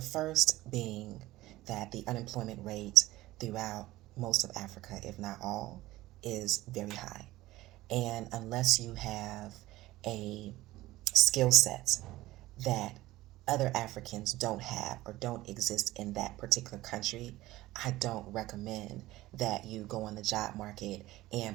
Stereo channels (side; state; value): left; quieter; 17.2 dB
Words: first being that the unemployment rate throughout most of Africa, if not all, is very high. And unless you have a skill set that other Africans don't have or don't exist in that particular country, I don't recommend that you go on the job market